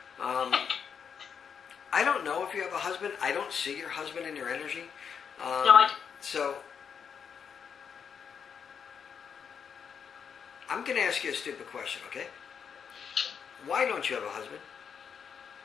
I don't know if you have a husband. I don't see your husband in your energy. No, I don't. So... I'm going to ask you a stupid question, okay? Why don't you have a husband?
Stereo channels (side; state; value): right; quieter; 7.0 dB